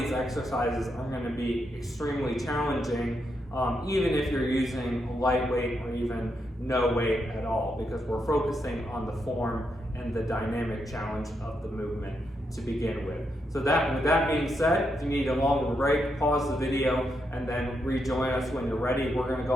exercises are going to be extremely challenging, even if you're using lightweight or even no weight at all, because we're focusing on the form and the dynamic challenge of the movement to begin with. So with that being said, if you need a longer break, pause the video and then rejoin us when you're ready. We're going to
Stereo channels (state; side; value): normal; both; correlation 0.81